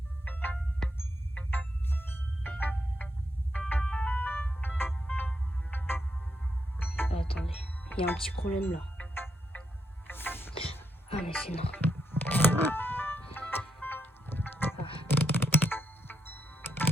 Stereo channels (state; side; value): normal; both; correlation 0.82